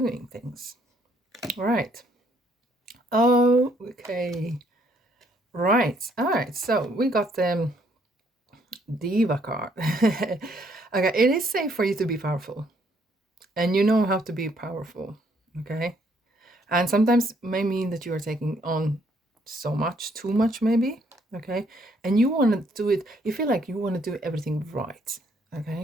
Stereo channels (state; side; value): normal; both; correlation 0.68